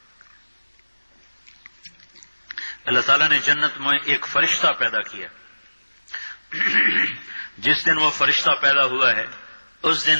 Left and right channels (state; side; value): inverted; both; correlation -1.00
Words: اللہ تعالیٰ نے جنت میں ایک فرشتہ پیدا کیا. جس دن وہ فرشتہ پیدا ہوا ہے اس